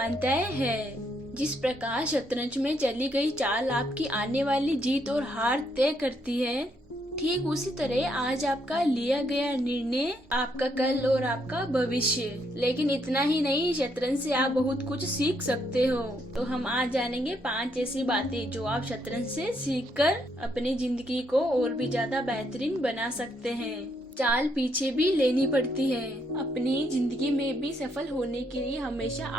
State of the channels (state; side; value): normal; both; correlation 0.74